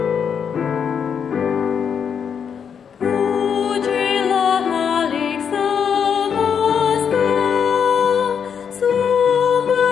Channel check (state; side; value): quieter; right; 7.3 dB